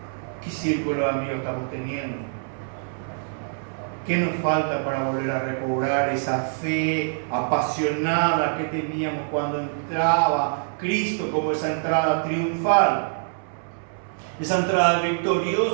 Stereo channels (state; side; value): silent; left; 62 dB below the other